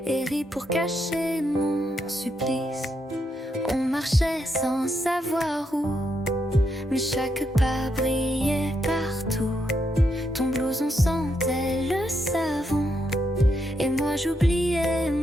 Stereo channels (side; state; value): both; normal; correlation 0.80